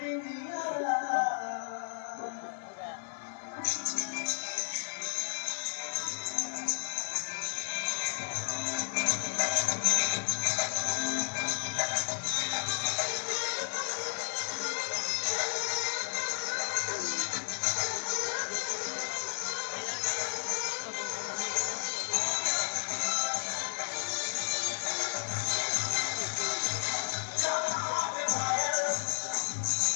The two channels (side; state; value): right; silent; 56 dB below the other